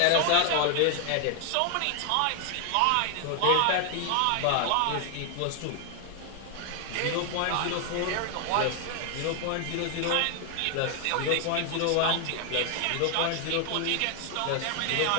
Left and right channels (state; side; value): different; both; correlation 0.00